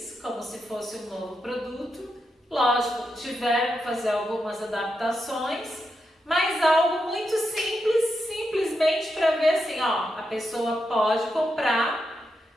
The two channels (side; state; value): both; normal; correlation 0.85